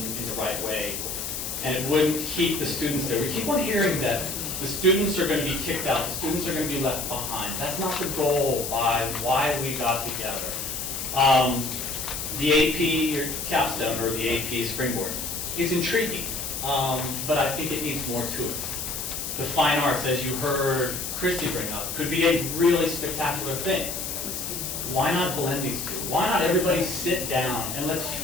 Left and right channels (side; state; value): left; noise; hiss, 4 dB below the sound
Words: in the right way, and it wouldn't keep the students there. We keep on hearing that the students are going to be kicked out, the students are going to be left behind. That's not the goal by why we got together. The AP or capstone or the AP springboard, it's intriguing, but I think it needs more to it. The fine arts, as you heard Christy bring up, could be a really spectacular thing. Why not blend these two? Why not everybody sit down and let's